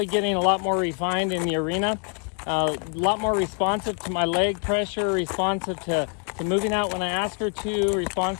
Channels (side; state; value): right; quieter; 38.2 dB